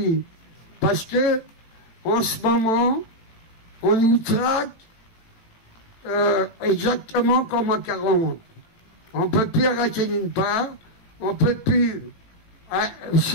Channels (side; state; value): right; late; 18 ms